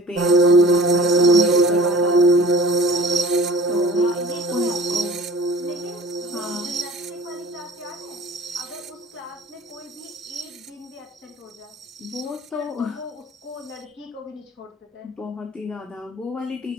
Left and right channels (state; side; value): normal; both; correlation 0.44